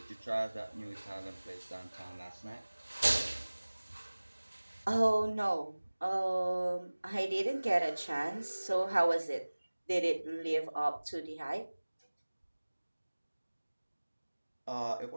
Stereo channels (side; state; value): both; inverted; correlation -1.00